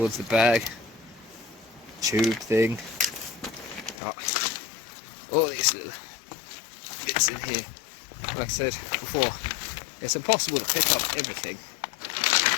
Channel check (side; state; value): right; drops out; at 4.0 s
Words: the bag. Tube thing. Got all these little bits in here. Like I said before, It's impossible to pick up everything.